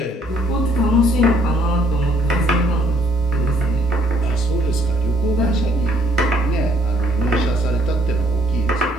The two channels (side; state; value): both; normal; correlation 0.65